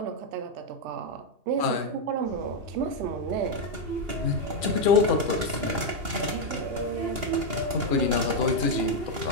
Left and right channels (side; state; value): left; late; 2.8 ms